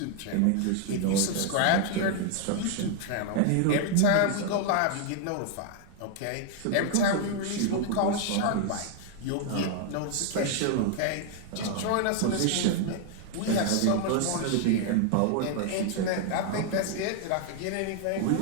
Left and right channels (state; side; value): different; both; correlation 0.00